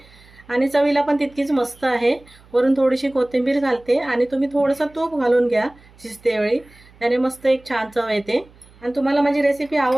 आणि चवीला पण तितकीच मस्त आहे. वरून थोडीशी कोथिंबीर घालते आणि तुम्ही थोडंसं तूप घालून घ्या शिजतेवेळी, त्याने मस्त एक छान चव येते. आणि तुम्हाला माझी रेसिपी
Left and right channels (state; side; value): noise; right; hum, 26 dB below the sound